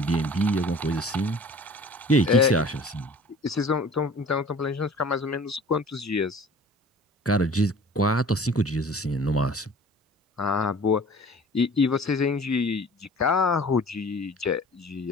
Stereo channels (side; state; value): both; normal; correlation 0.46